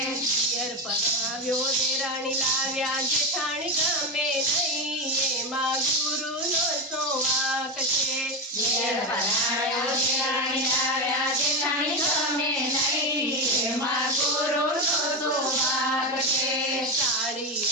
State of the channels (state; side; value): normal; both; correlation 0.15